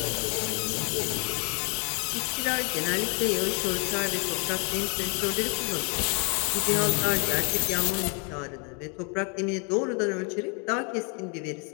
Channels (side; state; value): right; quieter; 35.8 dB